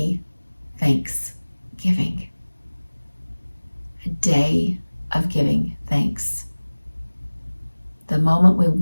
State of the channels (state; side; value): inverted; both; correlation -1.00